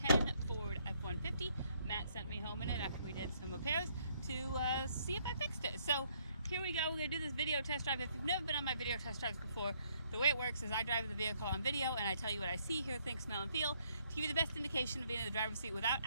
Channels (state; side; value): inverted; both; correlation -0.69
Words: Ford F150. Matt sent me home in it after we did some repairs to see if I fixed it. So here we go, we're going to do this video test drive. If you've never been on my video test drives before, the way it works is I drive the vehicle on video and I tell you what I see, hear, think, smell, and feel to give you the best indication of being in the driver's seat without